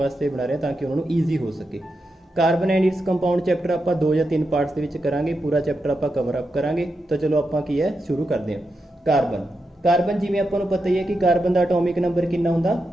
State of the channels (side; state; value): both; normal; correlation 0.87